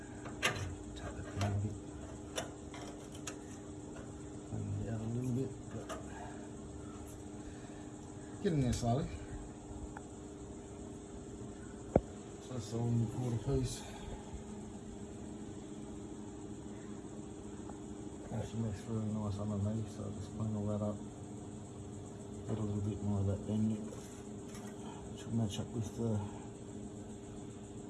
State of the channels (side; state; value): both; identical; correlation 1.00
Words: Take the pin a bit, clean it out a little bit, but getting there slowly. So that's all in the quarter piece. Actually makes really nice underneath, so I'll just clean all that up. Get a little bit more of that bend, which will match up with the